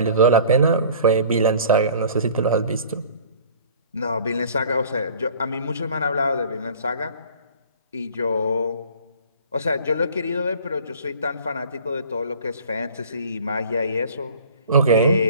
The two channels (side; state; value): both; inverted; correlation -0.47